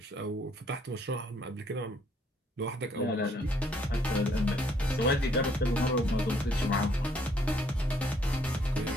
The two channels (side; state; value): both; normal; correlation 0.66